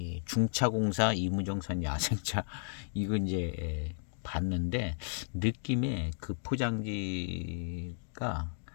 중차공사 이무정산 야생차 이거 이제 봤는데 느낌에 그 포장지가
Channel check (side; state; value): right; silent; digital silence